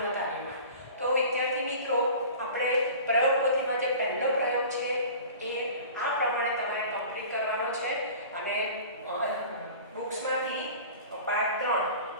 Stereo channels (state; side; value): inverted; both; correlation -0.40